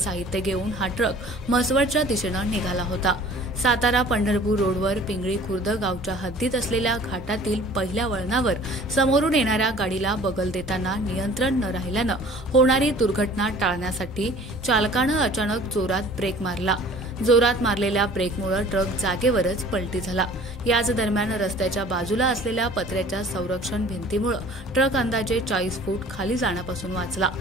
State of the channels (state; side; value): normal; both; correlation 0.48